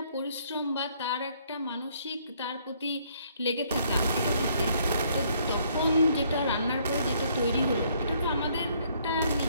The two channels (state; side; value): inverted; both; correlation -0.66